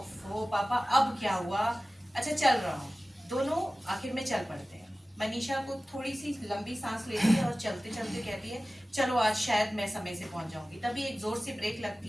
पापा अब क्या हुआ? अच्छा चल रहा हूँ। दोनों आखिर में चल पड़ते हैं। मनीषा को थोड़ी सी लंबी सांस लेती है और चलते चलते कहती है चलो आज शायद मैं समय से पहुंच जाऊंगी। तभी एक जोर से ब्रेक लगती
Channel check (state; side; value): normal; both; correlation 0.97